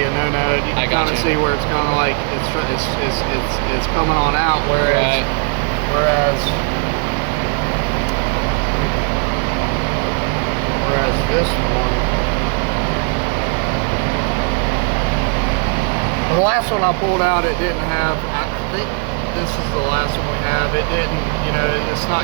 no-no. You can kind of see where it's kind of like it's coming on out. Whereas this one, well, the last one I pulled out, it didn't have. I think this is the last one we have. It didn't. You know, it's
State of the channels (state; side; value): quieter; left; 36.3 dB